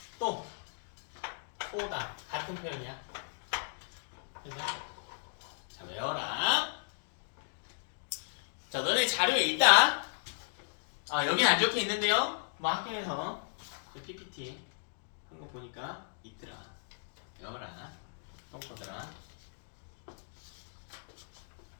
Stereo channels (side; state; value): right; silent; digital silence